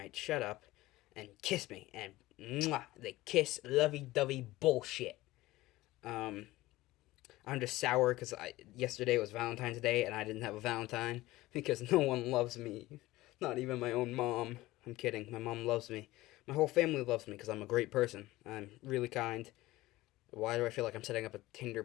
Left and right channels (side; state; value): right; quieter; 18.0 dB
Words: shut up and kiss me." And mwah, they kiss, lovey-dovey bullshit. I'm just sour because yesterday was Valentine's Day and I didn't have a Valentine because no one loves me. Not even my own mom. I'm kidding. My mom loves me. My whole family loves me because I'm a great person. I'm really kind. Why do I feel like I'm setting up a Tinder